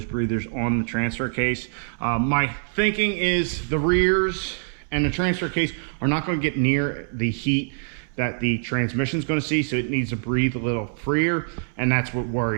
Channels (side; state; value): left; silent; 62 dB below the other